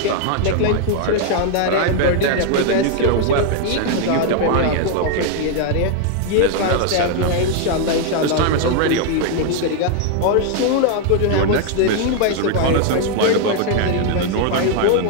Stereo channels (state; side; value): different; both; correlation 0.00